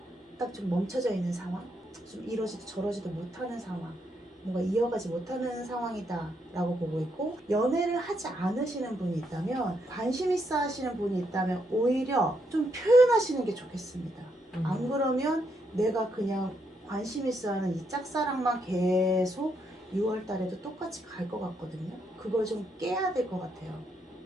딱 좀 멈춰져 있는 상황, 좀 이러지도 저러지도 못하는 상황, 뭔가 이어가지 못하는 상황이다라고 보고 있고 연애를 하지 않으시는 분이 있다면 관심 있어 하시는 분이 있다면 오히려 좀 표현하시는 게 좋겠습니다. 안 그러면 내가 그냥 관심 있어 하는 이 짝사랑만 계속 6월 달에도 똑같이 갈 것 같거든요. 그걸 좀 깨야 될 것 같아요.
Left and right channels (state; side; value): normal; both; correlation 0.77